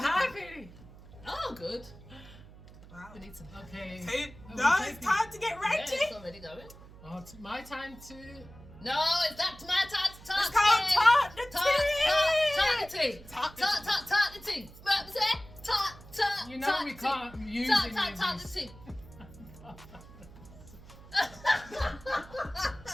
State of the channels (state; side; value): noise; right; hum, 19 dB below the sound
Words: happy. Oh, good. Wow. We need some. Okay. No, it's time to get Yeah, ready. it's already going. Oh, it's my time to. No, it's not my time to talk. It's called Talk the Tea. Talk the tea. What was it? Talk. You know we can't use any of Talk the this. tea.